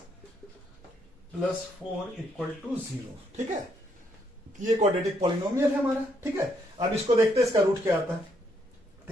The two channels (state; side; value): normal; both; correlation 0.73